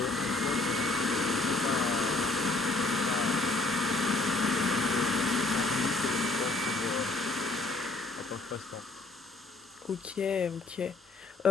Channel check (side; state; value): right; quieter; 3.2 dB